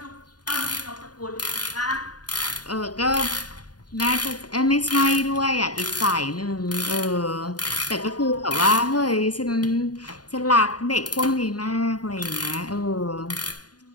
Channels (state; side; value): late; right; 0.69 ms